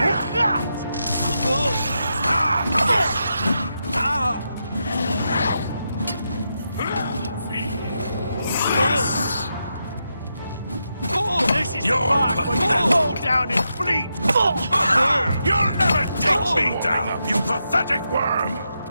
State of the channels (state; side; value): inverted; both; correlation -0.85